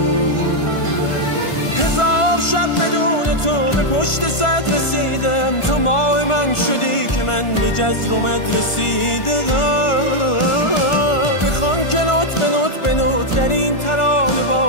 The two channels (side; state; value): right; late; 1.5 ms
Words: هزار شب بدون تو به پشت صد رسیدم. تو ماه من شدی که من به جزر و مد رسیدم. بخوان که نوت به نوت به نوت در این ترانه